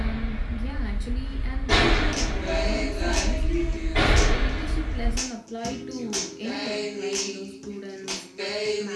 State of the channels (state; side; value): identical; both; correlation 1.00